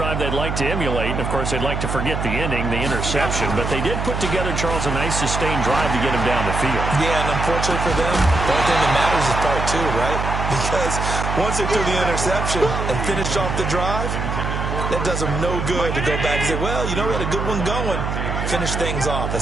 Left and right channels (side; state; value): right; noise; hum, 2 dB below the sound